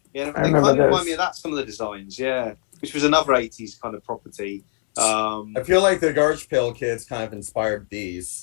Yeah, they kind of remind me of that. Some of the designs, yeah, which was another '80s kind of property. I feel like the Garbage Pail Kids kind of inspired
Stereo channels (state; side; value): silent; right; 64 dB below the other